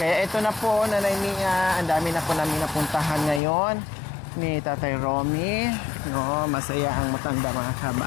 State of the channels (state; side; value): drops out; right; at 3.4 s